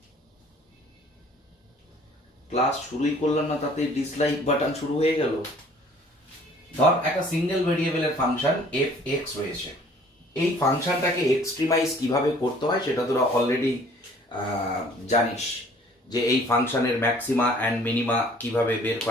class শুরুই করলাম না তাতে ডিসলাইক বাটন শুরু হয়ে গেল। ধর একটা সিঙ্গেল ভেরিয়েবলের ফাংশন এফ এক্স রয়েছে, এই ফাংশনটাকে এক্সট্রিমাইজ কিভাবে করতে হয় সেটা তোরা অলরেডি জানিস, যে এই ফাংশনের ম্যাক্সিমা অ্যান্ড মিনিমা কিভাবে বের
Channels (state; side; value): normal; both; correlation 0.55